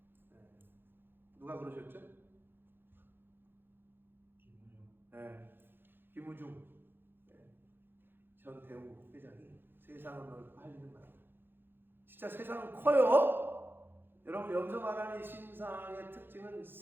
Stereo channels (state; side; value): late; left; 0.10 ms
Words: 누가 그러셨죠? 김우중 전 대우 회장이 세상은 넓고 할 일은 많다. 진짜 세상은 커요. 여러분, 여기서 말하는 이 신상의 특징은